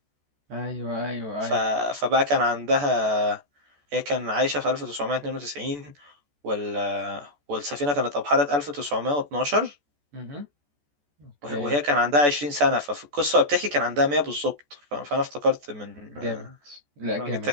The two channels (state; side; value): late; left; 14 ms